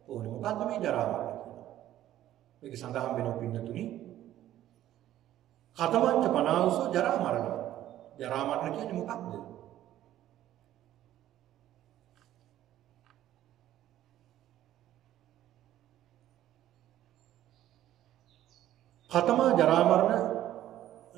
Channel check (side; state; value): left; quieter; 13.0 dB